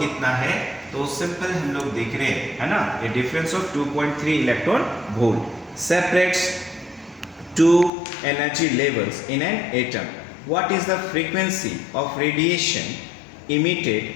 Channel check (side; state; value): right; drops out; at 7.9 s